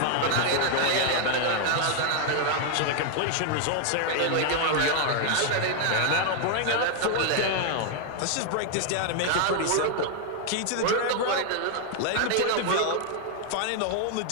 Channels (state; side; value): different; both; correlation 0.00